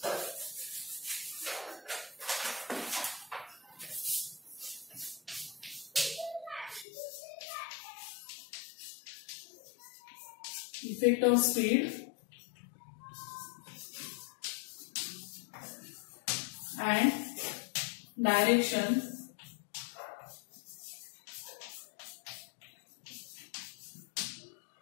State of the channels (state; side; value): drops out; right; at 6.9 s